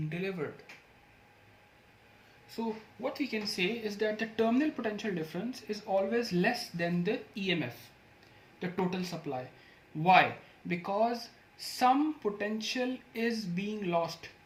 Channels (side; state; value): both; identical; correlation 1.00